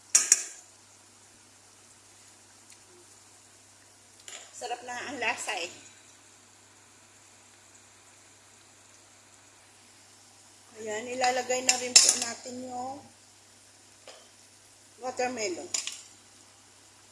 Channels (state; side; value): identical; both; correlation 1.00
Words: Sarap na ang lasa Ayan, ilalagay na rin po natin yung watermelon.